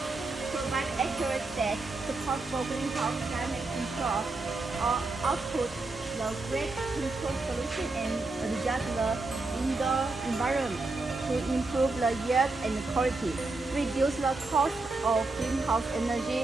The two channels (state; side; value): quieter; left; 3.4 dB